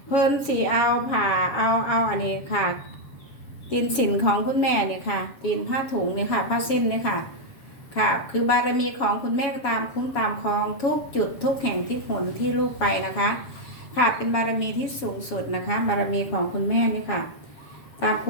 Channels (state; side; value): late; right; 7.2 ms